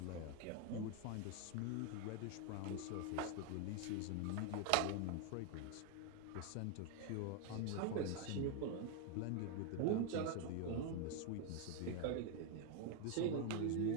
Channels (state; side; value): different; both; correlation 0.01